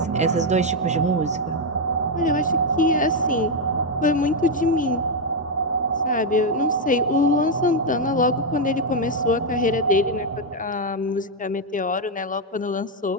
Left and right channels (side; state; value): both; normal; correlation 0.01